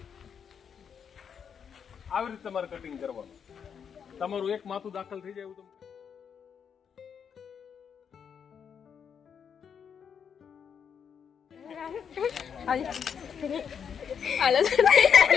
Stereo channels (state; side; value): quieter; right; 7.3 dB